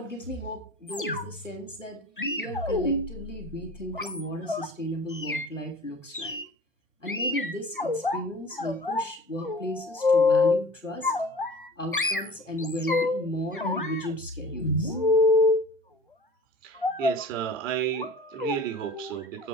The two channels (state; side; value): normal; both; correlation 0.41